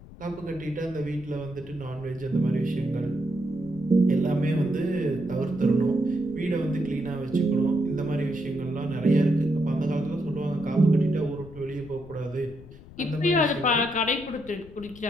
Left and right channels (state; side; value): noise; left; rumble, 19 dB below the sound